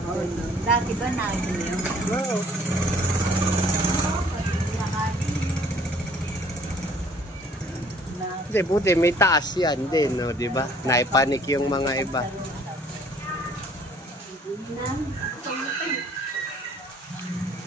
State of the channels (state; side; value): normal; both; correlation 0.57